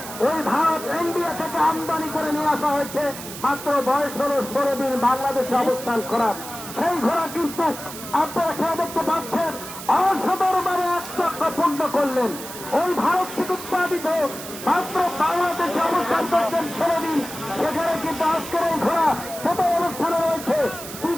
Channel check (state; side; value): noise; right; hiss, 11 dB below the sound